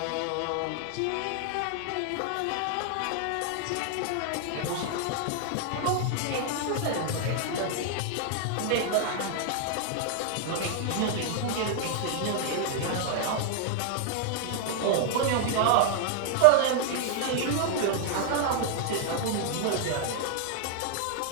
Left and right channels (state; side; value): different; both; correlation 0.00